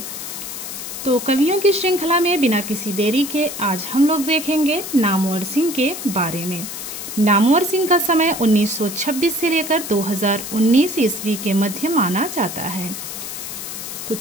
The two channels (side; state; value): left; noise; hiss, 8 dB below the sound